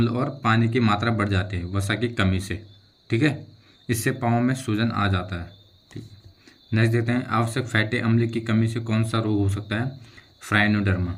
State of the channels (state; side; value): identical; both; correlation 1.00